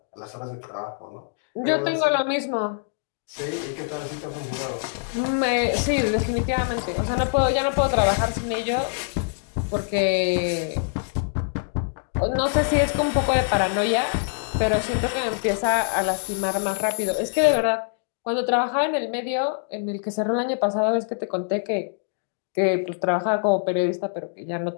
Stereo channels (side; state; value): right; silent; digital silence